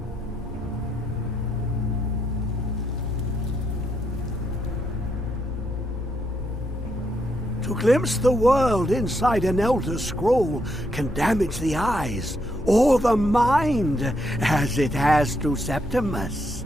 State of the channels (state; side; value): normal; both; correlation 0.78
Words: To glimpse the world inside an Elder Scroll can damage the eyes or the mind, as it has to Septimus.